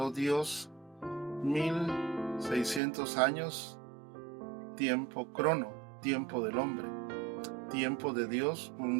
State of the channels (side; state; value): left; drops out; at 2.8 s